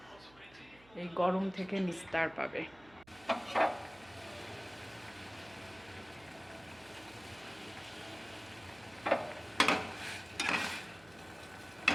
এই গরম থেকে নিস্তার পাবে।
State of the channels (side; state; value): right; noise; hum, 25 dB below the sound